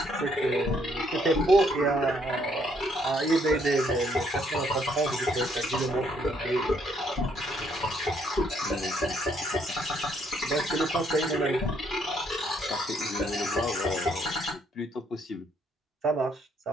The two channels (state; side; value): normal; both; correlation 0.69